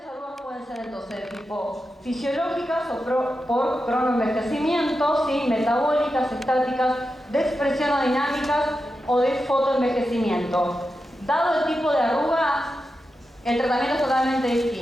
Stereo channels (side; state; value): both; normal; correlation 0.90